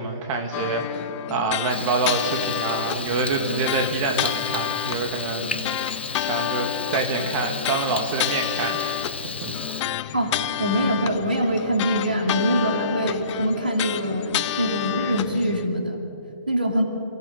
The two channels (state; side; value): inverted; both; correlation -0.35